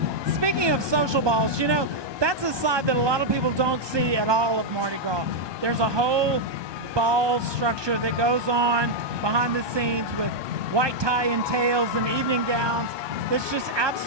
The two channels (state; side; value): late; left; 1.2 ms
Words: Speaking of social balls, you know, that's a side that a lot of people don't see at all of Mardi Gras. There's a whole ball structure that goes on behind the scenes with white tie and tails and evening gowns. It's just